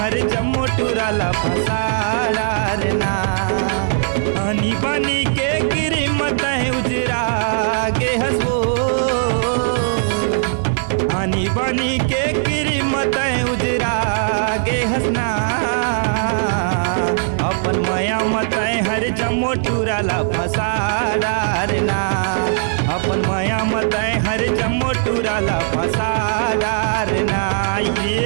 हर जम्मो टूरला फसाडारना। आनी बनी के कीमत उजरा गे हसबो, आनी बनी के कीमत उजरा गे हसना। अपन मया मत हर जम्मो टूरला फसाडारना, अपन मया मत हर जम्मो टूरला फसाडारना।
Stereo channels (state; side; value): silent; left; 60 dB below the other